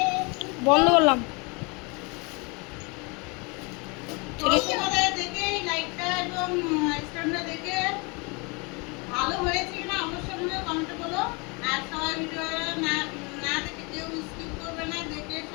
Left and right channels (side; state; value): right; quieter; 29.9 dB